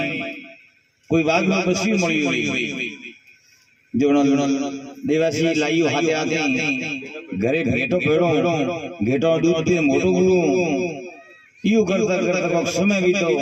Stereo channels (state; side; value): identical; both; correlation 1.00